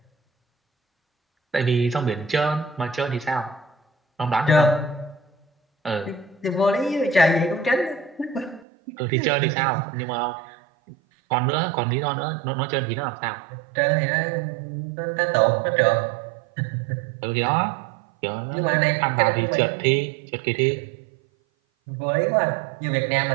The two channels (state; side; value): drops out; left; at 8.7 s